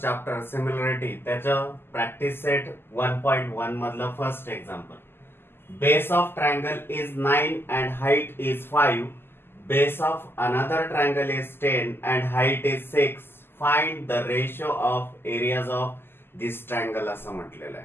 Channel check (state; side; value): late; right; 0.11 ms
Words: chapter similarity त्याचं प्रॅक्टिस सेट 1.1 मधलं first example. Base of triangle is 9 and height is 5. Base of another triangle is 10 and height is 6. Find the ratio of areas of this triangle असं म्हटलेलं